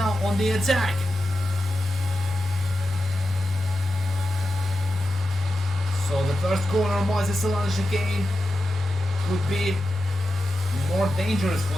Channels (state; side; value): normal; both; correlation 0.90